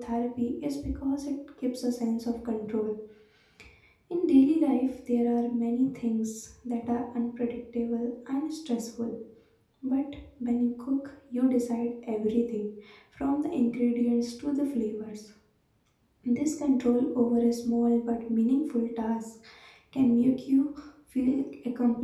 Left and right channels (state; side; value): identical; both; correlation 1.00